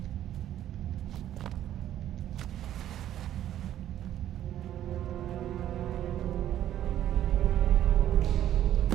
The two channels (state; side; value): quieter; left; 11.7 dB